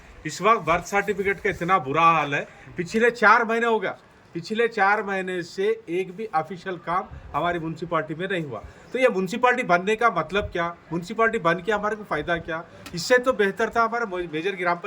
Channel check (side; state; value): both; identical; correlation 1.00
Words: इस वक्त बर्थ सर्टिफिकेट का इतना बुरा हाल है, पिछले 4 महीने हो गया, पिछले 4 महीने से एक भी ऑफिशियल काम हमारी म्यूनसिपाल्टी में नहीं हुआ। तो ये म्यूनसिपाल्टी बनने का मतलब क्या? म्यूनसिपाल्टी बन के हमारे को फ़ायदा क्या? इससे तो बेहतर था हमारा मेजर ग्राम